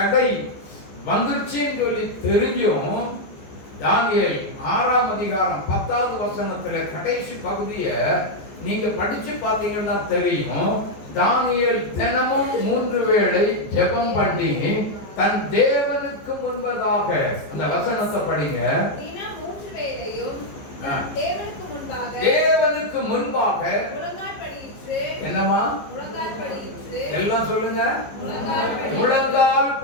வந்துருச்சுன்னு சொல்லி தெரிஞ்சும் தானியேல் 6ஆம் அதிகாரம் 10வது வசனத்துல கடைசி பகுதியை நீங்க படிச்சு பார்த்தீங்கன்னா தெரியும். தானியேல் தினமும் 3 வேளை ஜெபம் பண்ணி தன் தேவனுக்கு முன்பதாக, அந்த வசனத்தை படிங்க. தேவனுக்கு முன்பாக என்னமா எல்லாம் சொல்லுங்க, முழங்கால்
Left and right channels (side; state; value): right; late; 14 ms